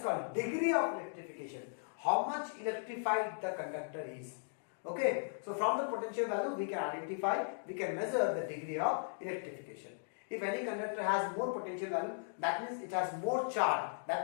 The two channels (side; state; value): right; silent; digital silence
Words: called degree of electrification. How much electrified the conductor is. Okay, so from the potential value we can identify, we can measure the degree of electrification. If any conductor has more potential value, that means it has more charge.